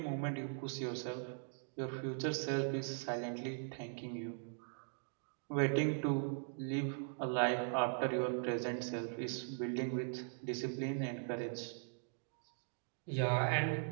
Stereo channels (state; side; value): silent; left; digital silence